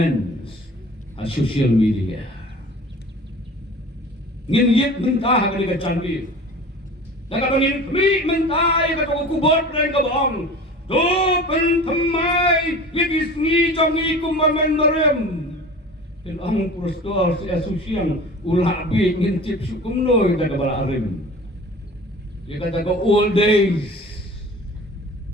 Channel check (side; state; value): both; normal; correlation 0.40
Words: a social media. Ngin yet mentah ka ni canbi. Daga ngin kami mentah ka to kubot ren ka bong. To pen thamai yigis ngi jom ngi kumamen barem. Ken ang prostor si asusyang ulah bi ngin tip sukum noy daga bala arim. Dia kata ke old days.